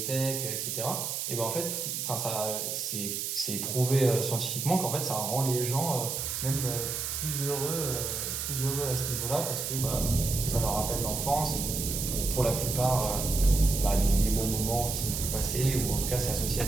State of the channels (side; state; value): right; noise; hiss, 3 dB below the sound